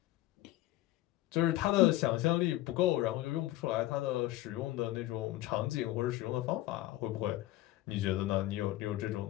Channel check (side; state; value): right; quieter; 16.0 dB